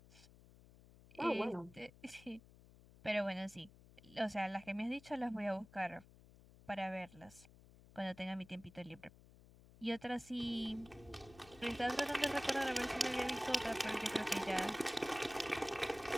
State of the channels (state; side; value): noise; left; hum, 22 dB below the sound